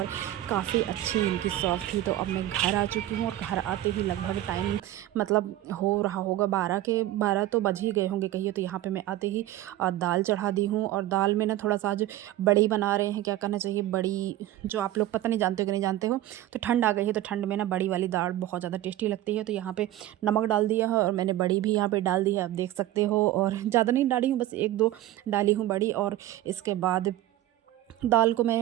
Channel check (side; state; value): left; quieter; 14.6 dB